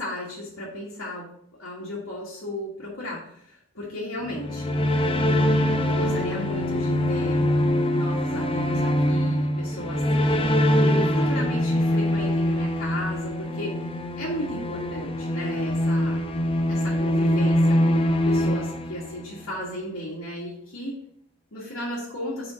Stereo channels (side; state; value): both; normal; correlation 0.76